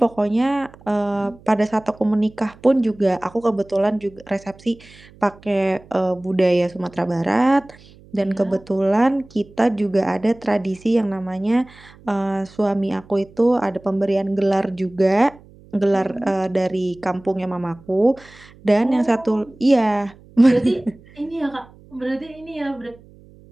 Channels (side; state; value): right; noise; hum, 24 dB below the sound